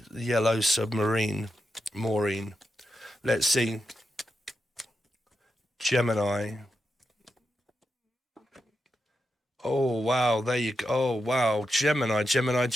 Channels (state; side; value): normal; both; correlation 0.87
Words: yellow submarine, Maureen. Let's see. Gemini. Oh, wow, there you go. Oh, wow, Gemini.